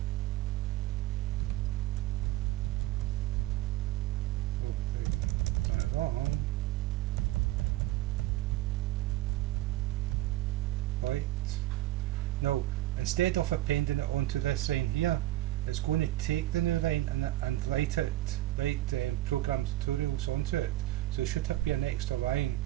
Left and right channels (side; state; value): left; quieter; 15.9 dB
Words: done it wrong. Right. Now, instead of appending it onto this line here, it's going to take the new line and write program tutorials onto it. So it should be an extra line.